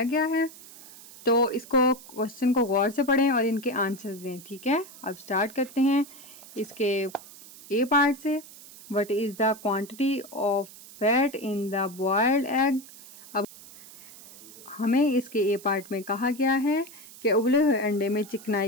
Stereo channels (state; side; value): noise; right; hiss, 18 dB below the sound